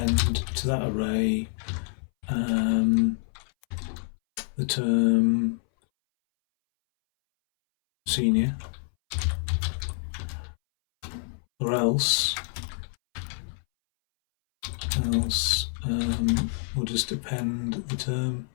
to that array the term senior, or else we'll just append the term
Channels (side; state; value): right; silent; 60 dB below the other